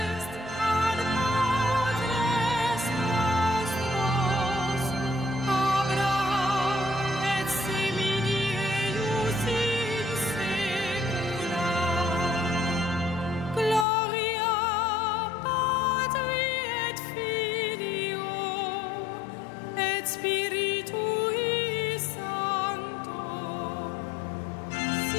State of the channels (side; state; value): right; drops out; at 13.9 s